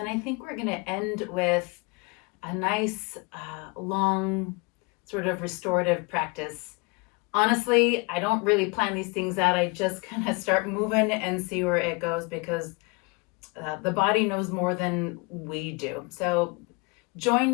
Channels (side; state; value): right; quieter; 29.1 dB